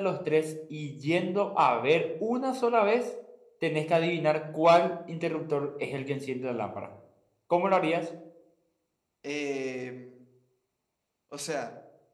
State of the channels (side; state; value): both; identical; correlation 1.00